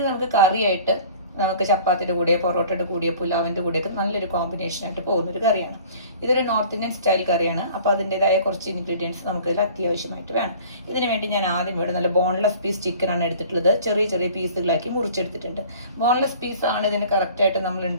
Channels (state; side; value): inverted; both; correlation -0.47